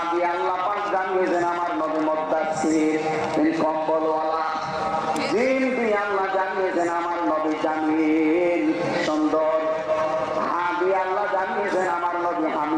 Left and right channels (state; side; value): noise; right; rumble, 30 dB below the sound